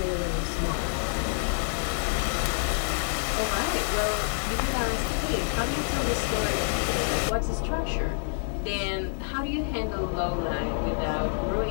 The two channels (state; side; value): silent; right; 60 dB below the other